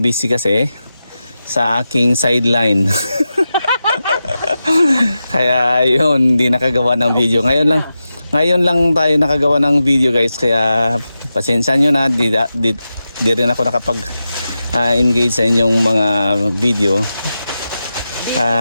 kasi sa aking sideline. Kaya yun, hindi nakagawa ng video. Ngayon lang tayo nakagawa ng video guys. Kaya pasensya nyo na, di rin ako nakapag engage sa inyong mga video.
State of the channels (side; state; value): both; inverted; correlation -0.91